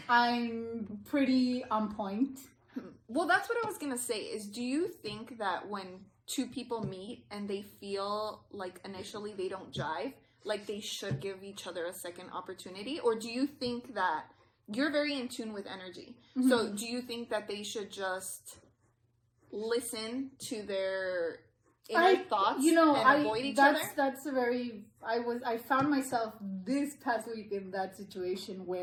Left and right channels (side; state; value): both; identical; correlation 1.00